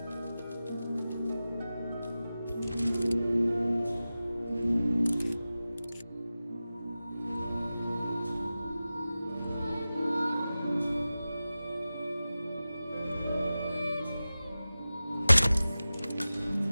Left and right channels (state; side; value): inverted; both; correlation -0.95